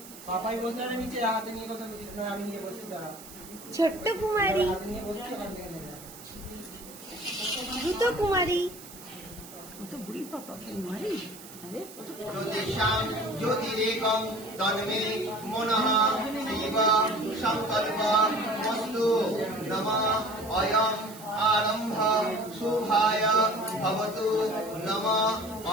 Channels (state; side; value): noise; right; hiss, 17 dB below the sound